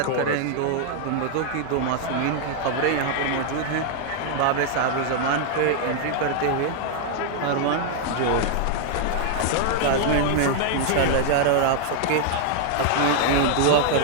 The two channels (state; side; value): different; both; correlation 0.00